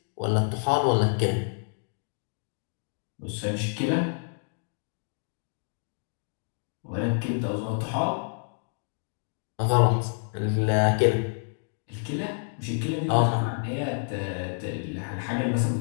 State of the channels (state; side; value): silent; right; digital silence